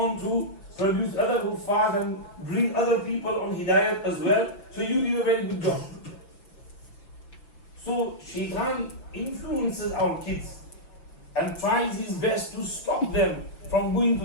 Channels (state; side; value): late; right; 5.9 ms